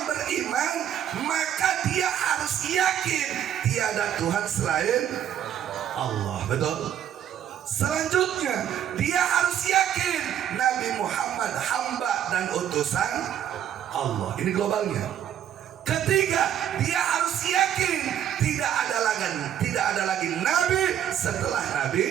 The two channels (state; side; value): quieter; left; 10.2 dB